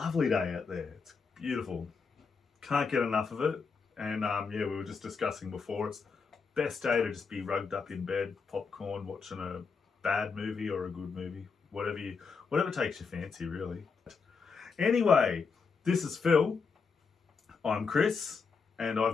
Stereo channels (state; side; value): quieter; right; 5.2 dB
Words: day out there, it's beautiful. Can't get enough of it. And yeah, we were just discussing before, it's best day to just be rugged up in bed, popcorn, watching a bad movie or a good movie. Whatever takes your fancy, really. Anyway, this is Phil. I'm Chris, and